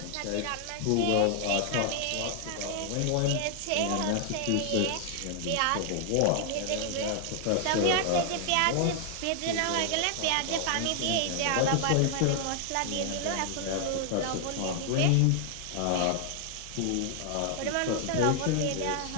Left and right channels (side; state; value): both; different; correlation 0.00